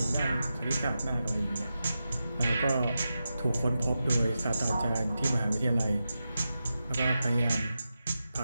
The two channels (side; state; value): both; inverted; correlation -0.91